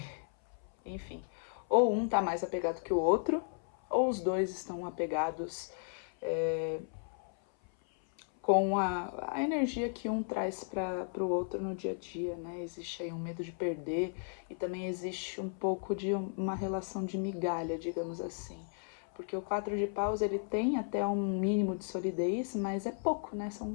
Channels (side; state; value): right; silent; 55 dB below the other